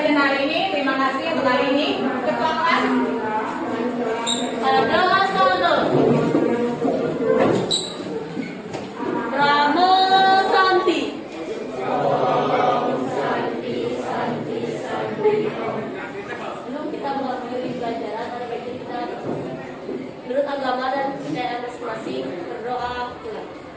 hari ini. Terima kasih untuk hari ini. Ketua kelas. Adalah Sono Ramo Santi. Sebelum kita mengakhiri pelajaran, ada baiknya kita menurut agama dan kepercayaan masing-masing berdoa pulang.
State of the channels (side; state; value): both; identical; correlation 1.00